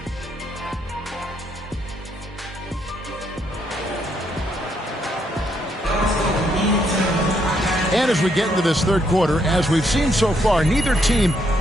And as we get into this third quarter, as we've seen so far, neither team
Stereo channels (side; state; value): both; normal; correlation 0.74